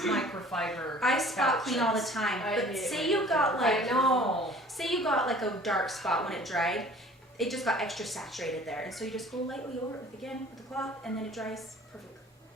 I spot clean all the couches. time. I But hate say you got I like, know. say you got like a dark spot when it dried, it just got extra saturated there. And so you just go lightly over it with the cloth, and then it dries perfectly.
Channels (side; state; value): both; normal; correlation 0.49